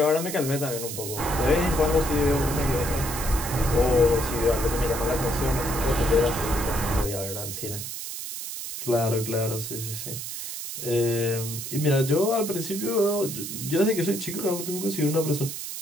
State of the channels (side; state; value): right; noise; hiss, 7 dB below the sound